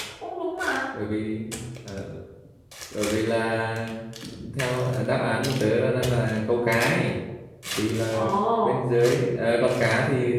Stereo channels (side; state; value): both; identical; correlation 1.00